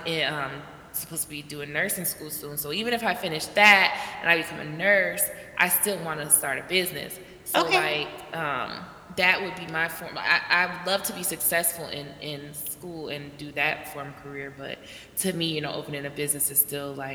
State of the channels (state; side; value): identical; both; correlation 1.00